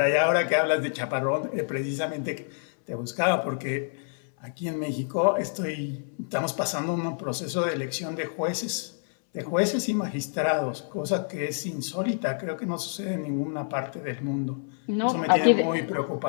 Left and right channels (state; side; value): silent; right; 60 dB below the other